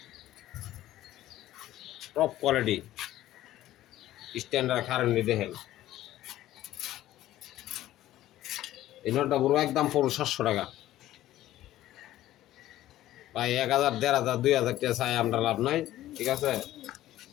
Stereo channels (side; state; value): right; quieter; 14.3 dB